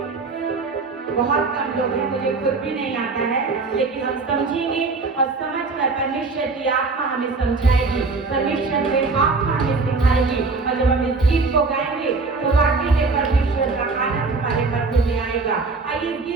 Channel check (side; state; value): left; quieter; 3.9 dB